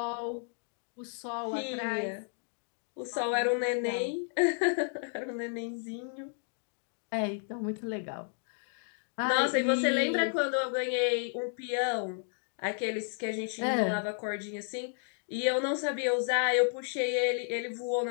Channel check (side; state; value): right; silent; 56 dB below the other